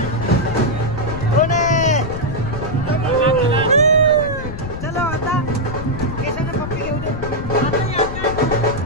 कोण आहे? चलो आता केसानं पप्पी घेऊ दे.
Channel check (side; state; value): left; noise; rumble, 7 dB below the sound